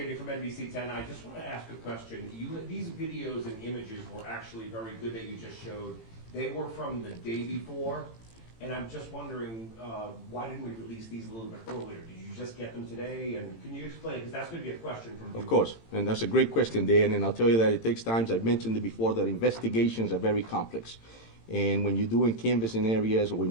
from NBC10. I just want to ask a question. These videos and images were actually very good that you just showed. They were from the day before, and I'm just wondering, why didn't we release these a little bit earlier? Did you just get them today? And can you explain? Because that's going to be a question from Of you. course, and that's a great question, Dan, and I'll tell you that it takes time. I've mentioned it before, that investigations are very complex. And when you're doing canvassing areas or when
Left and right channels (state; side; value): late; right; 18 ms